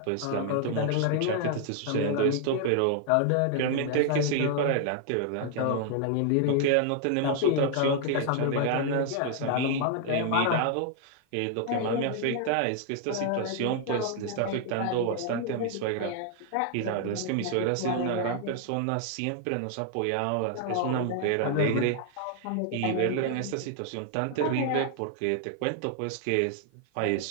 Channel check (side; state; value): both; different; correlation 0.00